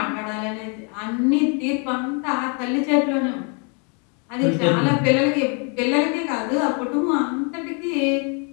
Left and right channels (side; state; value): right; quieter; 36.7 dB